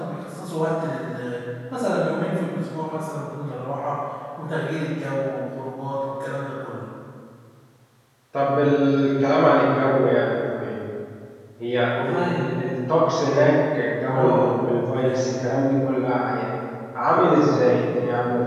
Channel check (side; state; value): both; identical; correlation 1.00